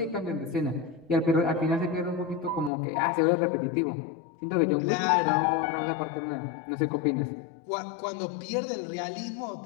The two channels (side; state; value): right; drops out; at 2.7 s